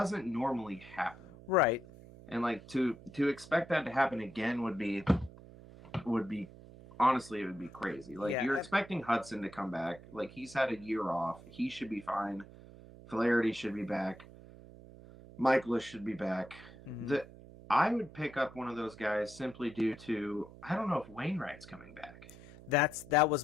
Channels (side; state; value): right; noise; hum, 18 dB below the sound